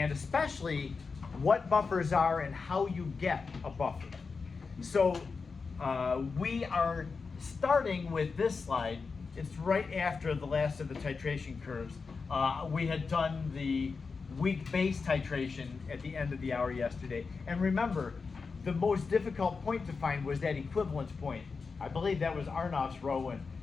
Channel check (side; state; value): right; quieter; 4.8 dB